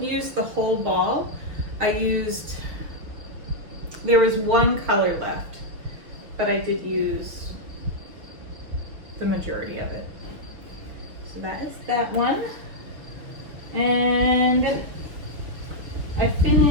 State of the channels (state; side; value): late; left; 6.3 ms